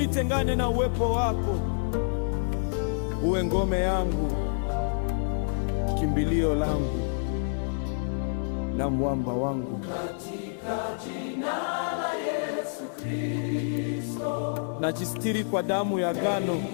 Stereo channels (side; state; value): right; silent; digital silence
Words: na uwepo wako. Uwe ngome yangu, kimbilio langu na mwamba wangu. Katika jina la Yesu Kristo, najistiri kwa damu ya agano